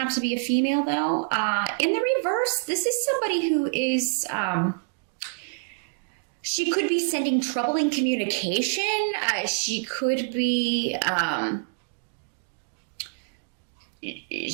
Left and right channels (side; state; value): left; quieter; 39.4 dB